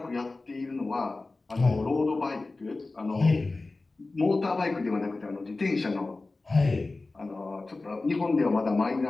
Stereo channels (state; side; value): quieter; right; 3.4 dB